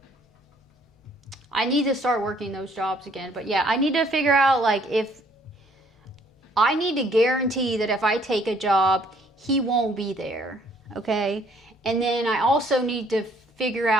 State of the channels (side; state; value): both; normal; correlation 0.62